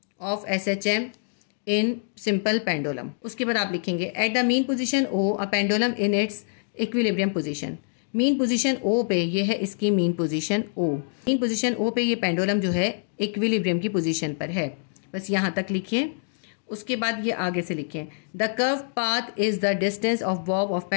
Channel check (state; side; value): silent; right; digital silence